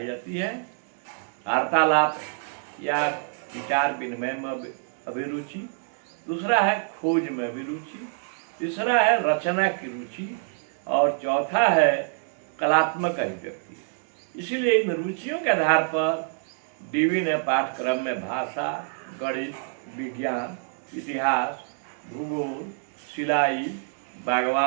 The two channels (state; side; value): silent; left; 61 dB below the other